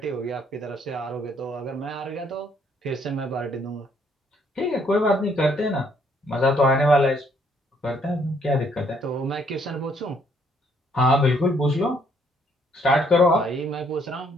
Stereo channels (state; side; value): normal; both; correlation 0.68